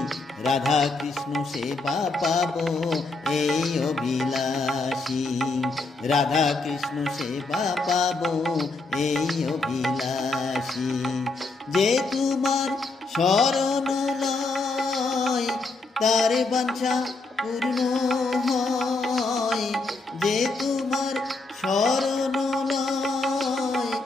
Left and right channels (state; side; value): quieter; right; 3.6 dB